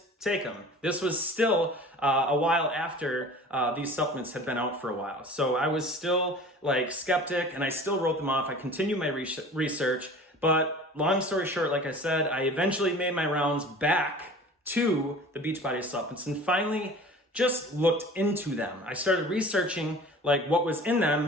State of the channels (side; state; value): both; normal; correlation 0.42